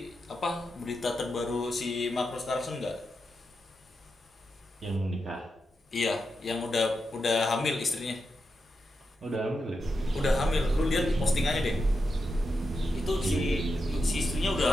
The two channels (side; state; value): both; normal; correlation 0.87